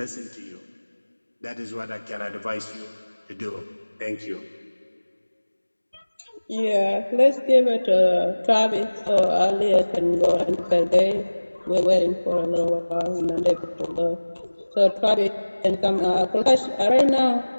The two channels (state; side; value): inverted; both; correlation -1.00